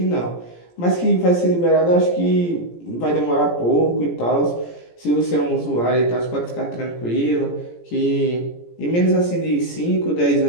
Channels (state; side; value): late; right; 17 ms